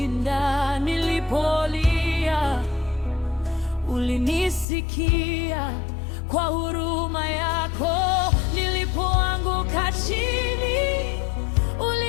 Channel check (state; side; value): drops out; right; at 4.7 s